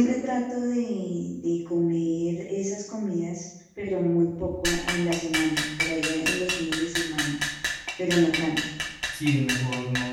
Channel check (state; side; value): identical; both; correlation 1.00